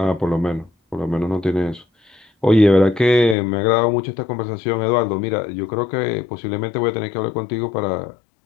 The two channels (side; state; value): right; drops out; at 3.4 s